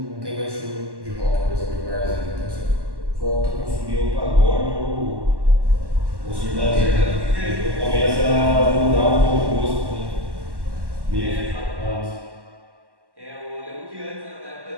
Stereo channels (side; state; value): left; late; 1.1 ms